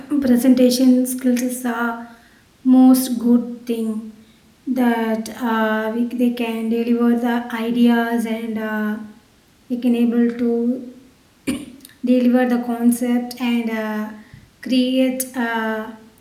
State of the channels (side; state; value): both; identical; correlation 1.00